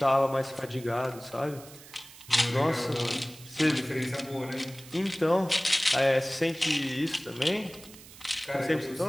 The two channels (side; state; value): right; noise; hiss, 19 dB below the sound